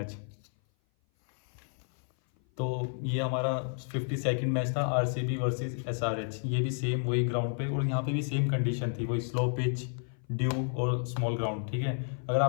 तो ये हमारा 52nd मैच था RCB वर्सेस SRH। ये भी सेम वही ग्राउंड पे, और यहाँ पे भी सेम कंडीशन थी, वही स्लो पिच, ड्यू और स्मॉल ग्राउंड, ठीक है। अगर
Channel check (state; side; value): silent; right; 56 dB below the other